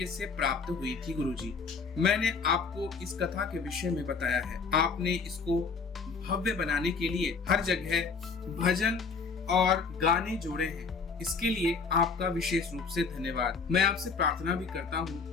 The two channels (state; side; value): quieter; right; 5.1 dB